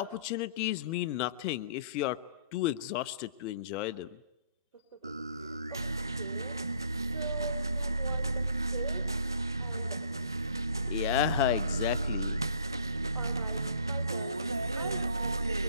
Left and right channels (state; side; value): inverted; both; correlation -0.57